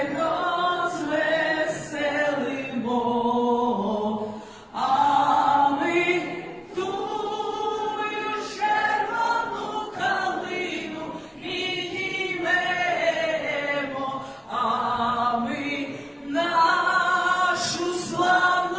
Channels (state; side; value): identical; both; correlation 1.00